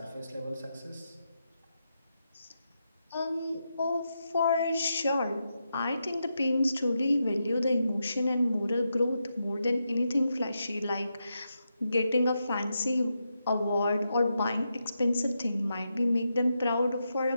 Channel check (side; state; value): both; inverted; correlation -0.86